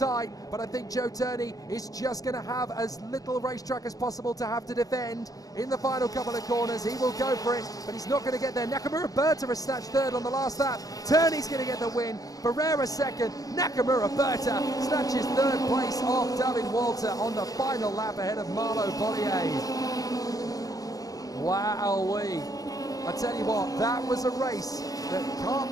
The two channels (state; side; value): late; right; 0.17 ms